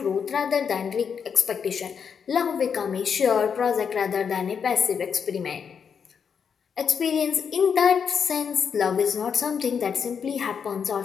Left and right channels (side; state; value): right; quieter; 6.8 dB